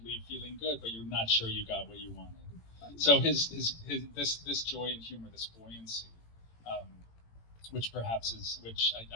leave feeling good, but you're not sure you got what you wanted. So this joy and humor, this buoyancy, which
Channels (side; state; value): right; late; 18 ms